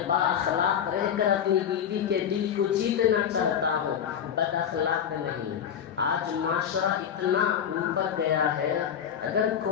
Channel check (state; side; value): quieter; right; 8.6 dB